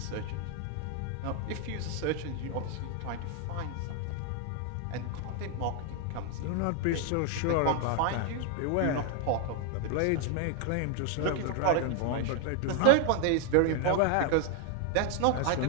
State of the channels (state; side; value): different; both; correlation 0.00